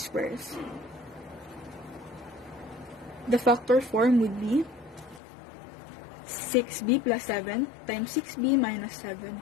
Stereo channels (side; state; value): right; drops out; at 5.2 s